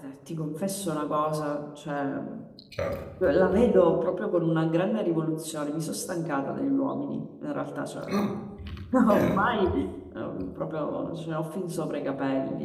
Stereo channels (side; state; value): both; identical; correlation 1.00